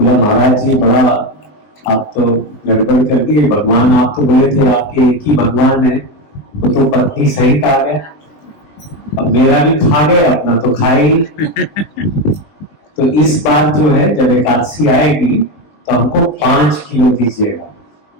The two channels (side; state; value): right; late; 20 ms